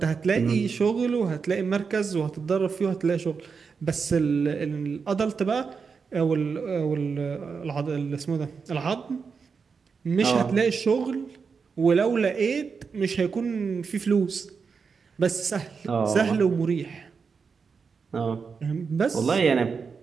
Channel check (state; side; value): quieter; left; 5.5 dB